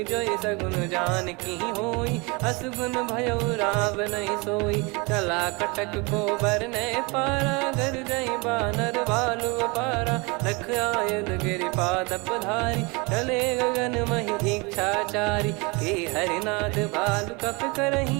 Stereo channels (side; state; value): left; quieter; 28.2 dB